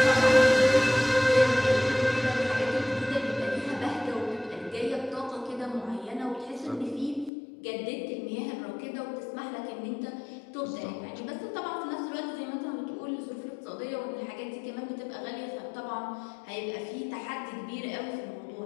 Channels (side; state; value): right; drops out; at 7.3 s